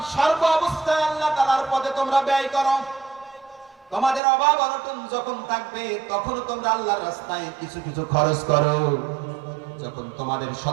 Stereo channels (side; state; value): left; drops out; at 4.2 s